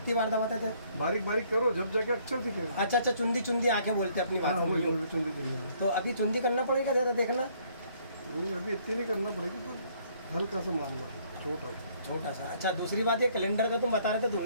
बार दबाते थे? बारीक बारीक करो जब जाके अक्षर दिखेगा। अच्छा अच्छा, चुंदी चुंदी आंखें बोलते अपनी हाँ बात में वही यूं। वही, चुंदी चुंदी। तो अभी चुंदी करना पड़ेगा ज़्यादा देखना। अभी इतनी नहीं करना पड़ेगी, पर हल्का सा मामला छोटा। छोटा सा। अच्छा दूसरी बात, ये कैलेंडर का तुम बता रहे थे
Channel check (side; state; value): both; inverted; correlation -0.64